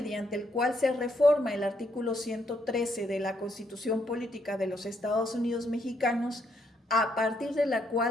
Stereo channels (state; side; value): normal; both; correlation 0.74